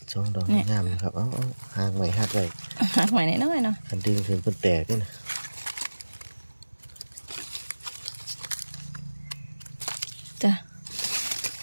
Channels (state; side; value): inverted; both; correlation -1.00